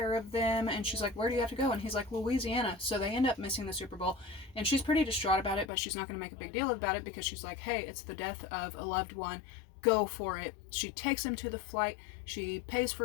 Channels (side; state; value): right; drops out; at 5.7 s